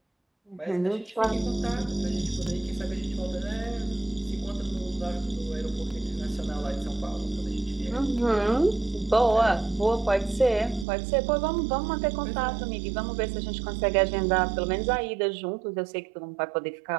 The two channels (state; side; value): drops out; left; at 10.9 s